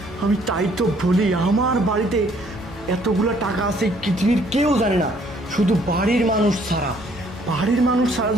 আমি তাই তো বলি, আমার বাড়িতে এতগুলো টাকা আছে পৃথিবীর কেউ জানে না, শুধু বাড়ির মানুষ ছাড়া। বাড়ির মানুষ ছাড়া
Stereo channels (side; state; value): both; normal; correlation 0.63